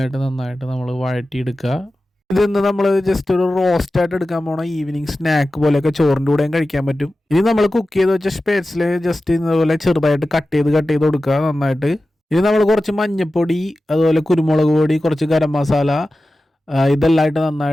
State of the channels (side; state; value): both; normal; correlation 0.94